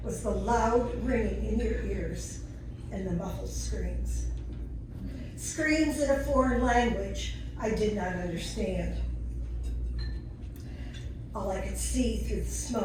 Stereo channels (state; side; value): identical; both; correlation 1.00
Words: was the loud ringing in your ears and the muffled screams. Screams in a foreign language I did not understand. All I could see through the